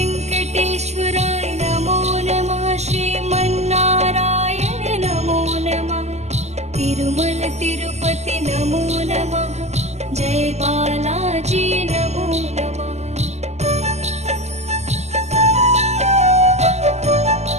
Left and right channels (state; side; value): late; left; 0.33 ms